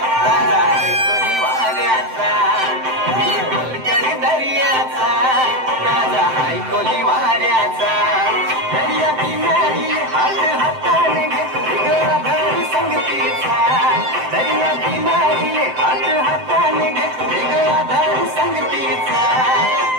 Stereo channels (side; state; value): left; late; 7.8 ms